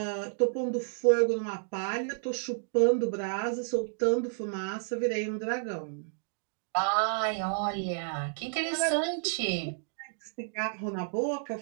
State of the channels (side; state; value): left; silent; digital silence